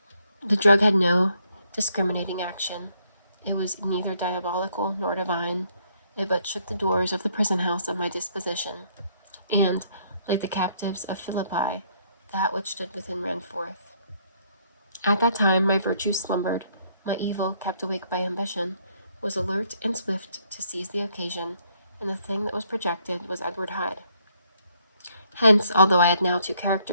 The drug had no discriminating action. It was neither diabolical nor divine. It but shook the doors of the prison house of my disposition, and, like the captives of Philippi, that which stood within ran forth. At that time my virtue slumbered, my evil, kept awake by ambition, was alert and swift to seize the occasion, and the thing that was projected was Edward Hyde. Hence, although I had now two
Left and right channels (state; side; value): inverted; both; correlation -0.69